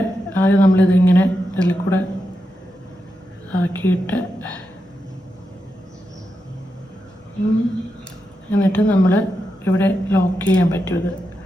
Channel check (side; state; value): both; normal; correlation 0.87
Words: ആദ്യം നമ്മളിതിങ്ങനെ ഇതിൽ കൂടെ ആക്കിയിട്ട് എന്നിട്ട് നമ്മൾ ഇവിടെ ലോക്ക് ചെയ്യാൻ പറ്റും.